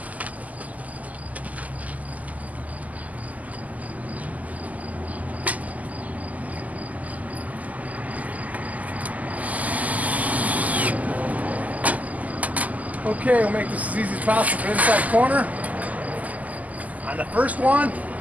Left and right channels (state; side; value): late; left; 0.077 ms